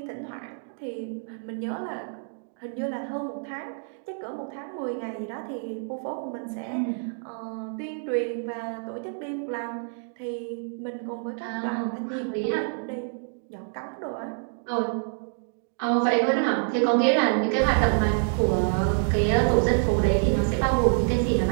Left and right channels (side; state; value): left; silent; 60 dB below the other